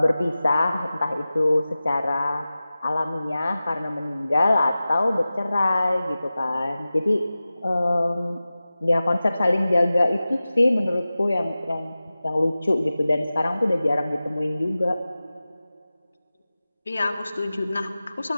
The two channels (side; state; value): both; inverted; correlation -0.96